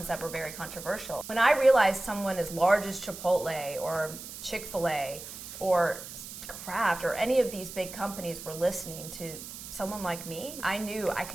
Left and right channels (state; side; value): noise; right; hiss, 11 dB below the sound